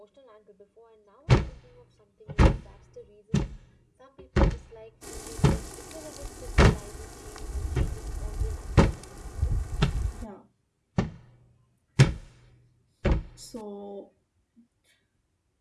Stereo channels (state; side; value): identical; both; correlation 1.00